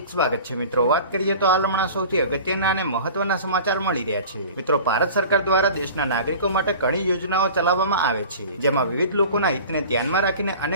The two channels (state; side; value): inverted; both; correlation -0.40